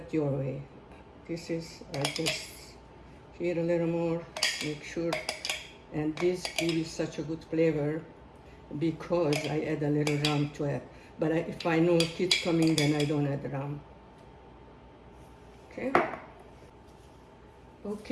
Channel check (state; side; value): identical; both; correlation 1.00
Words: your way. This is, I just here a little more, make sure. And this gives such a good flavor because I add a little rum to it. But if I know kids coming, then I don't add rum. Okay?